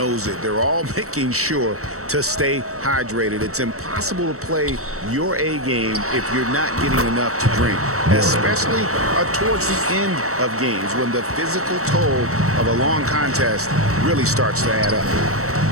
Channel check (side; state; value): left; late; 0.64 ms